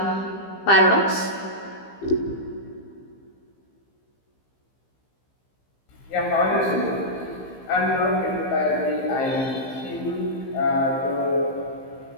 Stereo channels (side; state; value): right; late; 15 ms